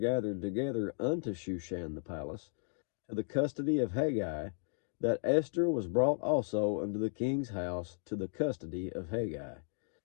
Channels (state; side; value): silent; right; digital silence